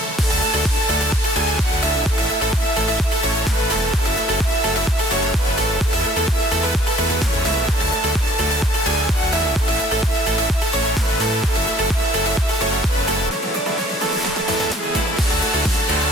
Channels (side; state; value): both; normal; correlation 0.58